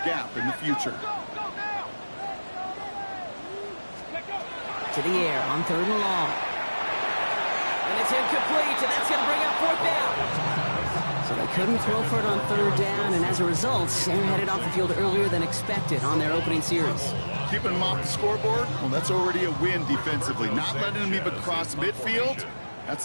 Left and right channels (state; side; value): inverted; both; correlation -1.00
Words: gap in the future. To the air on 3rd and long. And it's incomplete, and that's going to bring up 4th down. So they couldn't throw for it on 3rd down, and as a result, they're headed off the field earlier than expected on their opening series. Keeping them off the scoreboard, well, that's already a win defensively. Not letting them even cross midfield,